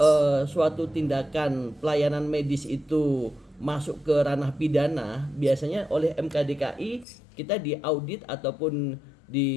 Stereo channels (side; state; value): right; drops out; at 7.1 s